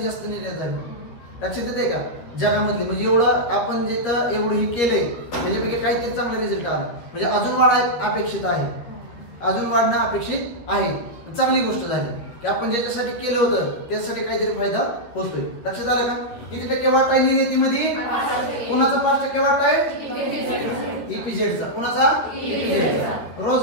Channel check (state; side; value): late; right; 13 ms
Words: जास्त निर्यात झाली. लक्षात येते का? जगामधली. म्हणजे एवढं आपण जिथं एवढं हे केलंय त्याच्यापैकी काहीतरी चांगला रिझल्ट आला. म्हणजे अजून वाढ अपेक्षित आहे. अजून वाढणं अपेक्षित आहे. चांगली गोष्ट झाली की आपण ज्याच्यासाठी केलं होतं त्यासाठी काहीतरी फायदा होतोय. लक्षात आलं का? किती टक्के वाटा आहे निर्यातीमध्ये? कोणाचा 5% वाटा आहे? EPZचा. कोणाचा? EPZचा.